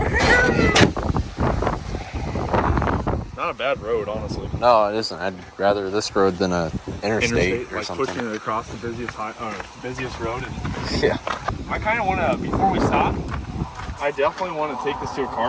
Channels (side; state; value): both; identical; correlation 1.00